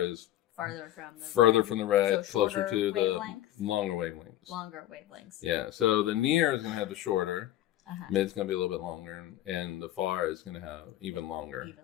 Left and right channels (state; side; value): quieter; right; 13.6 dB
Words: further from the red, so closer to the wavelengths? longer wavelengths. Longer wavelengths. Yeah, so the near is going to have the shorter, mid's going to be a little bit longer, and the far is going to have even longer